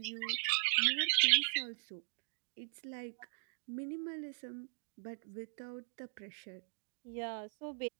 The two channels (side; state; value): left; silent; digital silence